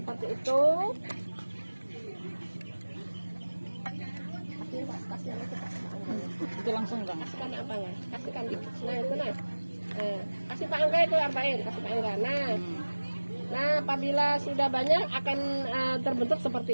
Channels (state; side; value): inverted; both; correlation -1.00